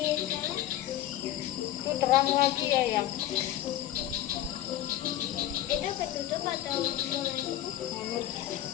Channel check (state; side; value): quieter; right; 12.9 dB